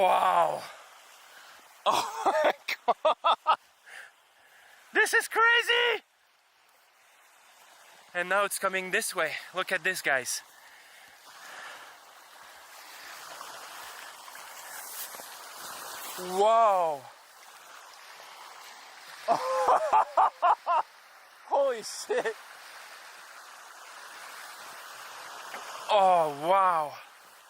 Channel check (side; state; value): both; identical; correlation 1.00